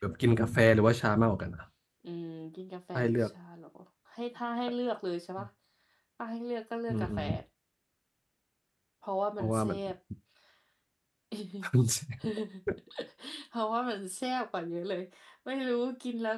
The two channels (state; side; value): identical; both; correlation 1.00